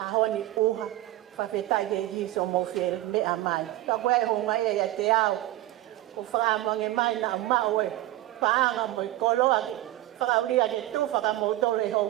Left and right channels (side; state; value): left; quieter; 15.7 dB